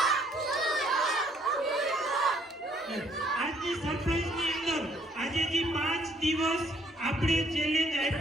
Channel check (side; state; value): both; normal; correlation 0.65